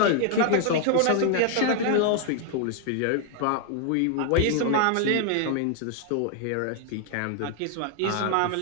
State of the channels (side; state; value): both; different; correlation 0.00